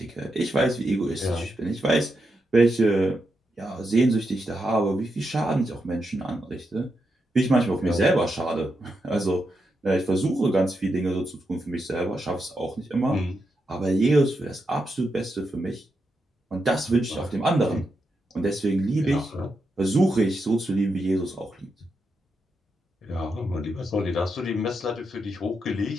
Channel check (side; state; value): both; normal; correlation 0.85